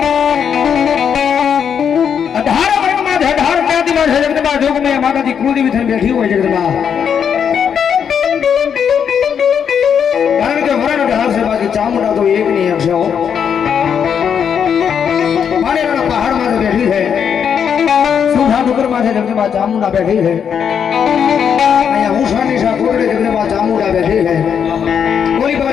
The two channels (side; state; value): right; quieter; 7.6 dB